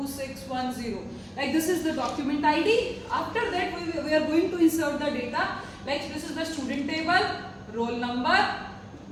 Like this is the document ID. After that, we are going to insert the data. Like this is the student table, roll number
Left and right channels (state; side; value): identical; both; correlation 1.00